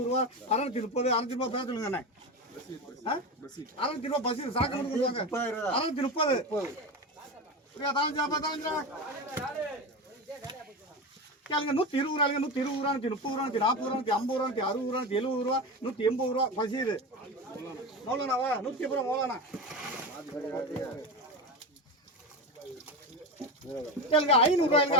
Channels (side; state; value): both; normal; correlation 0.22